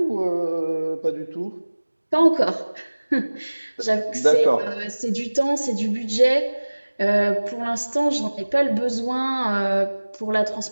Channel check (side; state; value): both; inverted; correlation -1.00